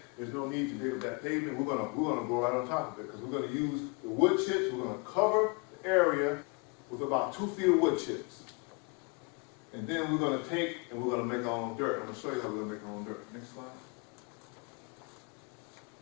there's no need to dig up that pavement, we're gonna grow right on top of it because we're gonna use the wood chips, we're gonna cover the area with about 2 feet of wood chips. And then we're gonna take and we're gonna make our own dirt. I'm gonna show you how we're gonna make our own dirt. Next slide.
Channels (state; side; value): quieter; right; 30.4 dB